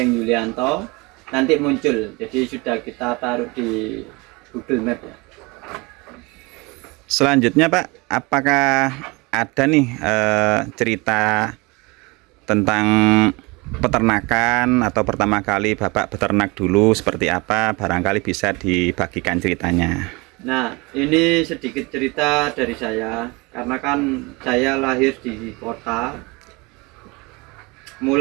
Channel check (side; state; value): left; quieter; 25.8 dB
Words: Yulianto. Nanti muncul. Jadi sudah kita taruh di Google Map ya. Selanjutnya Pak, apakah ada nih cerita tentang peternakan atau pertama kali Bapak beternak dulu seperti apa? Barangkali bisa dibagikan ceritanya. Nah, ini sedikit cerita dari saya, karena kan saya lahir di kota.